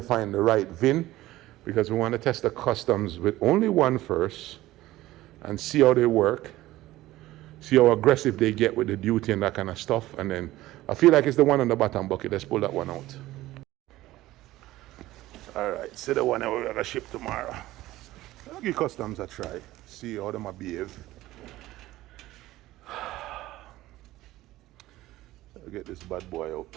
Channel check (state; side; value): quieter; left; 16.5 dB